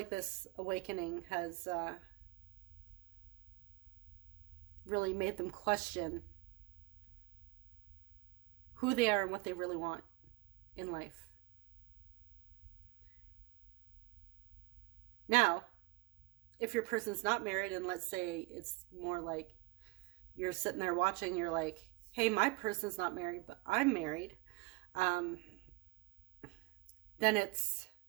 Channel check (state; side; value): quieter; left; 25.6 dB